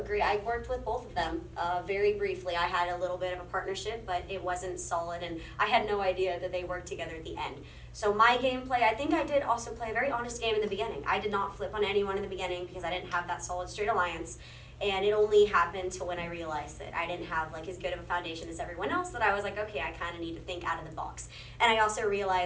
I worked with both of them very briefly. I had a little bit of a partnership, but it wasn't solid, and I had no idea that they worked together at the end. So my gameplay, I think I did also play a very honest game in the beginning. I did not flip on anyone in the beginning because I didn't have that solid straight alliance. And it only happened to when I realized that I didn't have like as good of a foundation as everyone else, that I was like, okay, I kind of need to think out of the box. And I also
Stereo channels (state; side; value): identical; both; correlation 1.00